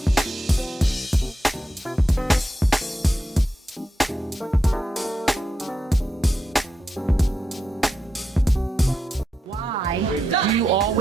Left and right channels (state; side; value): normal; both; correlation 0.86